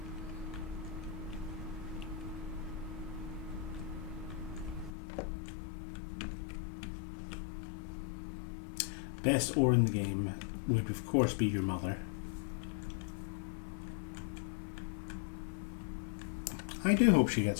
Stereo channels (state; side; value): drops out; right; at 4.9 s